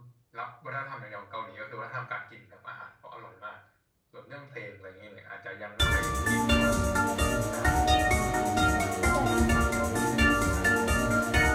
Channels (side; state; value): both; identical; correlation 1.00